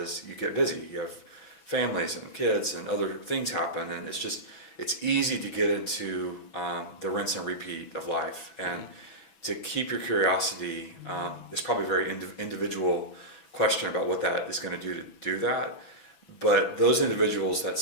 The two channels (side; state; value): right; late; 6.1 ms